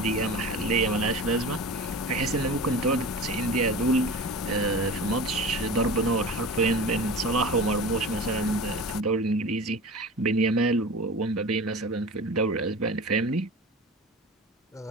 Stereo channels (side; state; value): both; normal; correlation 0.34